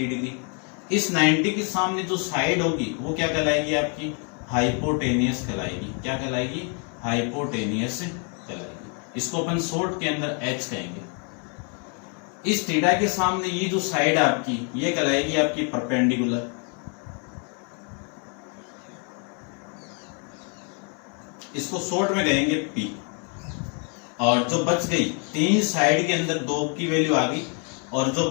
डिग्री। इस 90 के सामने जो साइड होगी वो क्या कहलाएगी? आपकी हाइपोटेनियस कहलाएगी। क्या कहलाएगी? हाइपोटेनियस कहलाएगी। इसको अपन शॉर्ट के अंदर एच कहेंगे। इस थीटा के सामने ये जो साइड आपकी ये कहलाएगी आपकी परपेंडिकुलर। इसको शॉर्ट में कहेंगे पी। और जो बच गई 3 साइड के अंदर 2 की वैल्यू आ गई, और जो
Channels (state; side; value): quieter; right; 38.3 dB